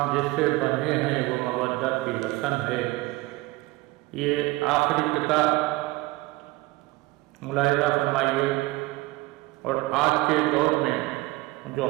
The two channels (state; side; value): quieter; left; 20.8 dB